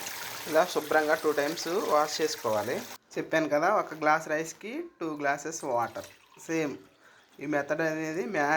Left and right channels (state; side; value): identical; both; correlation 1.00